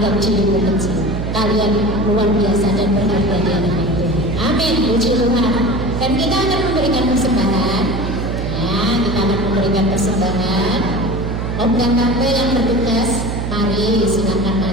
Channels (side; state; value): right; noise; hum, 3 dB below the sound